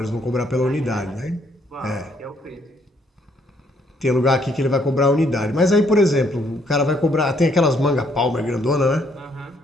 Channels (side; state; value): both; normal; correlation 0.69